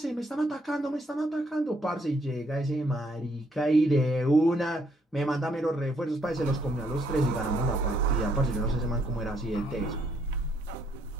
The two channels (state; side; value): normal; both; correlation 0.70